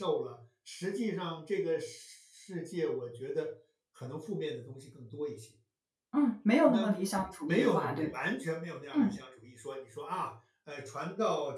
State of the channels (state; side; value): identical; both; correlation 1.00